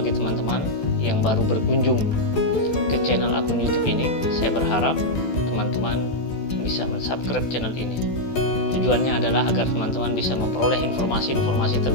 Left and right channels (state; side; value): late; right; 14 ms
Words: teman-teman yang baru berkunjung ke channel akun YouTube ini, saya berharap teman-teman bisa mensubscribe channel ini. Tujuannya adalah agar teman-teman bisa memperoleh informasi-informasi